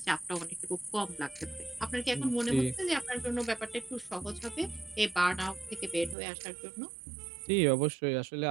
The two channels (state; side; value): drops out; left; at 6.2 s